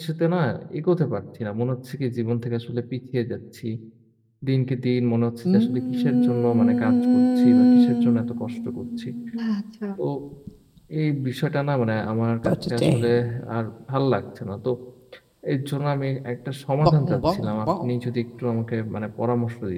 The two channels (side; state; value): both; identical; correlation 1.00